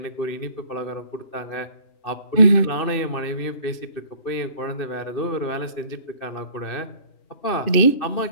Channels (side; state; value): right; late; 2.6 ms